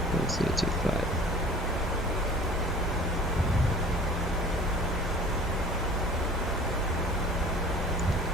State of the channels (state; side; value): normal; both; correlation 0.44